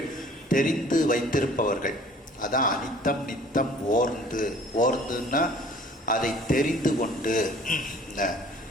தெரிந்து வைத்திருப்பவர்கள். அதான் அனித்தம் நித்தம் ஓர்ந்துன்னா அதை தெரிந்து கொண்டு,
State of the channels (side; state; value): both; normal; correlation 0.52